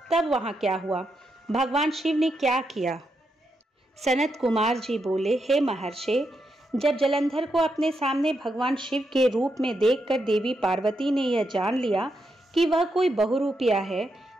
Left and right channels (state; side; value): normal; both; correlation 0.83